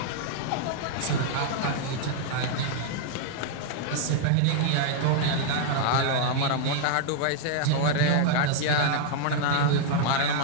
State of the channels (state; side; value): different; both; correlation -0.01